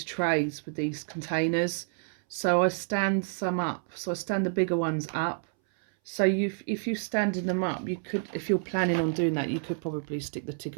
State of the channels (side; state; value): left; silent; 59 dB below the other